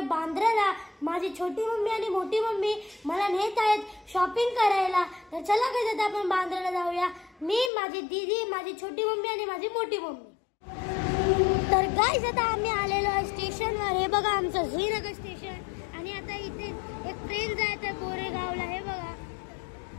बांद्राला। माझी छोटी मम्मी आणि मोठी मम्मी मला नेत आहेत शॉपिंग करायला। तर चला गाइस आता आपण बांद्राला जाऊया, मी, माझी दीदी, माझी छोटी मम्मी आणि माझी मोठी मम्मी। तर गाइस आता आम्ही आलेलो आहे स्टेशनवर। हे बघा आमचं झुईनगर स्टेशन आणि आता इथे एक ट्रेन जात आहे बोरेगावला, हे बघा।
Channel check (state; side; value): drops out; right; at 7.7 s